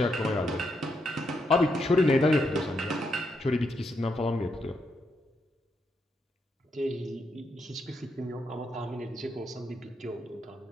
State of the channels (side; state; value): both; normal; correlation 0.80